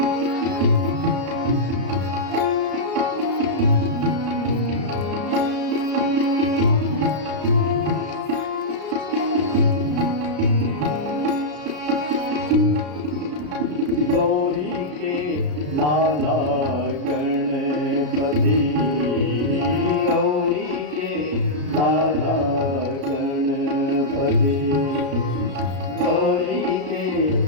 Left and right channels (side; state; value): left; late; 33 ms